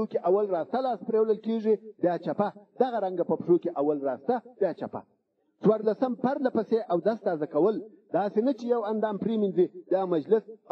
کې اول راسته لاس پریولل کېږي بیا چپه دغه رنګه په پښو کې اول راسته بیا چپه څوارلسم پرله پسې اودس تازه کول داسې نه چې یو اندام پرېمینځي بیا مجلس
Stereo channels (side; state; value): both; identical; correlation 1.00